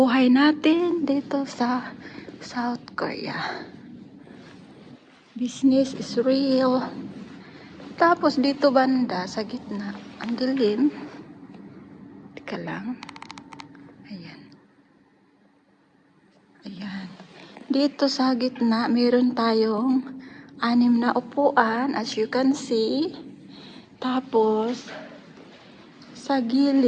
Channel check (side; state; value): both; identical; correlation 1.00